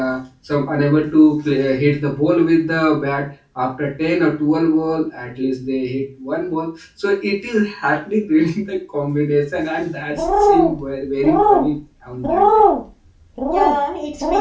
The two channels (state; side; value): identical; both; correlation 1.00